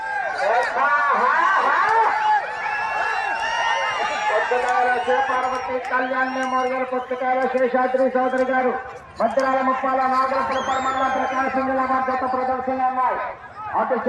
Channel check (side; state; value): both; identical; correlation 1.00